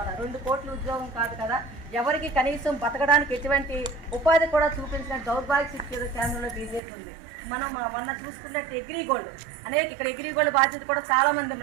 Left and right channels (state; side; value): drops out; left; at 6.8 s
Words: 2 కోట్ల ఉద్యోగం కాదు కదా, ఎవరికి కనీసం బతకడానికి ఎటువంటి ఉపాధి కూడా చూపించిన దౌర్భాగ్య స్థితి కేంద్రంలో బీజేపీ ఉంది. మనం మొన్న చూసుకున్నట్టు అగ్రిగోల్డ్ ఇక్కడ అగ్రిగోల్డ్ బాధ్యత కూడా చాలా మంది